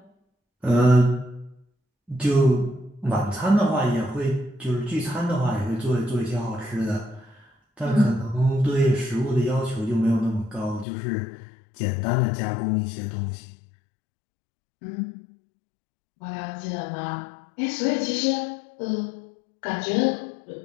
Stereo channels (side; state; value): right; drops out; at 10.9 s